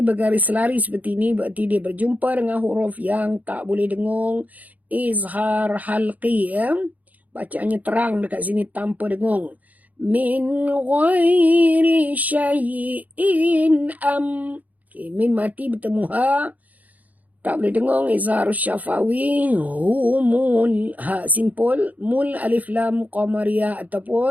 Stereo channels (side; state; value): left; late; 0.077 ms